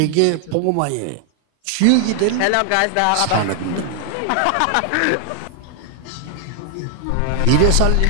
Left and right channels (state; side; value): different; both; correlation 0.00